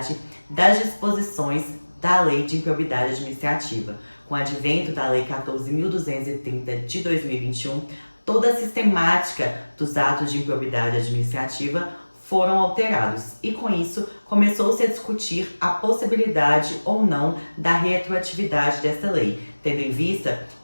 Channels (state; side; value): inverted; both; correlation -1.00